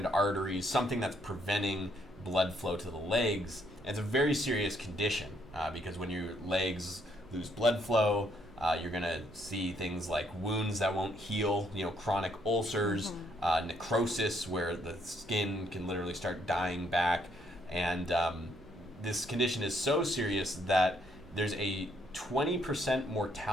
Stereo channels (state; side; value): noise; right; rumble, 21 dB below the sound